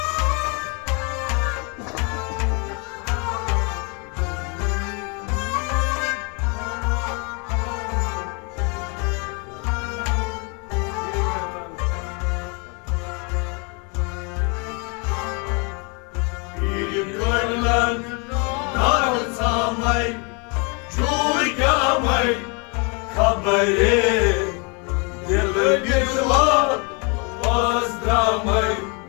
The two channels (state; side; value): quieter; right; 33.1 dB